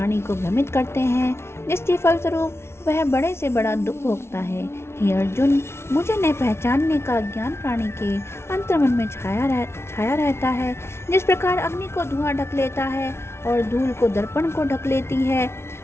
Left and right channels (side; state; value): right; late; 0.12 ms